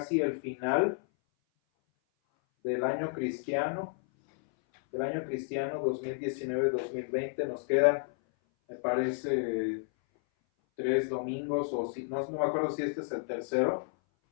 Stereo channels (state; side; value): silent; right; 57 dB below the other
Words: el final del año cristiano 2019-2020. Nos quedan, me parece, 3 domingos, o si no me acuerdo si este es el tercero,